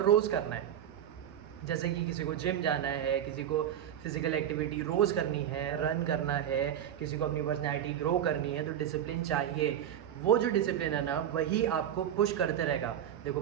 रोज़ करना है। जैसे कि किसी को जिम जाना है, किसी को फिज़िकल एक्टिविटी रोज़ करनी है, रन करना है, किसी को अपनी पर्सनैलिटी ग्रो करनी है, तो डिसिप्लिन चाहिए। वो जो डिसिप्लिन है ना वही आपको पुश करते रहेगा। देखो,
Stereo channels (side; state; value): left; quieter; 10.2 dB